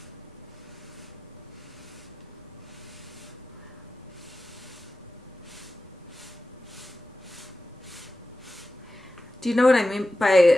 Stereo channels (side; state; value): both; normal; correlation 0.94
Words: Do you know what I mean